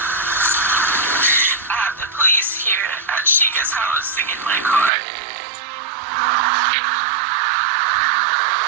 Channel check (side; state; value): left; drops out; at 4.9 s